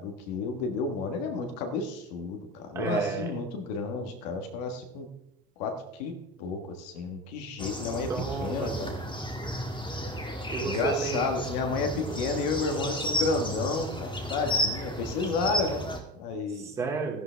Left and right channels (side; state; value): both; normal; correlation 0.26